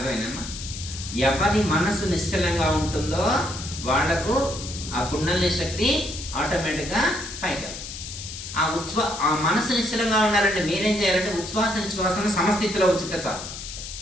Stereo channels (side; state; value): left; noise; hiss, 10 dB below the sound